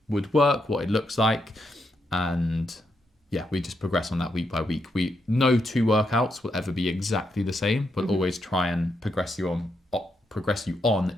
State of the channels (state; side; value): normal; both; correlation 0.81